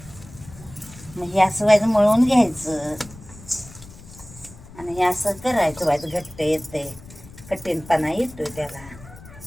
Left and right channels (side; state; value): left; noise; rumble, 19 dB below the sound